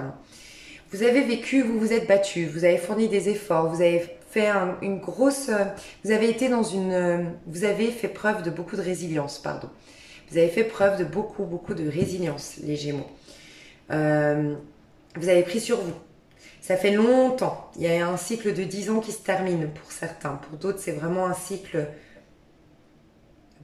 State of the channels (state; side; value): identical; both; correlation 1.00